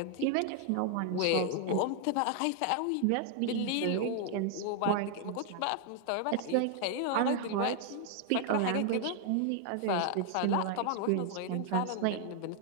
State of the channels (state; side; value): different; both; correlation 0.00